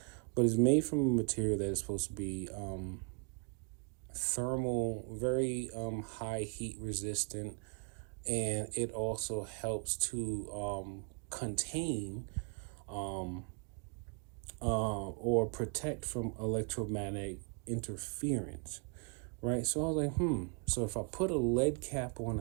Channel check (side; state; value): left; quieter; 38.1 dB